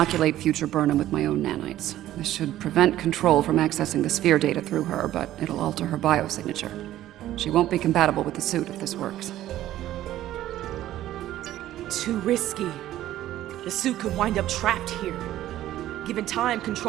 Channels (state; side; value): quieter; left; 13.6 dB